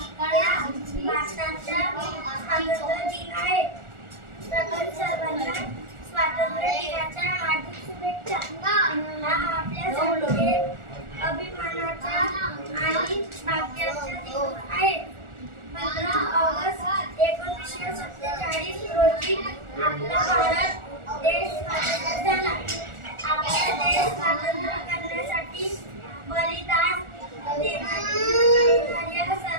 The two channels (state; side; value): late; left; 1.4 ms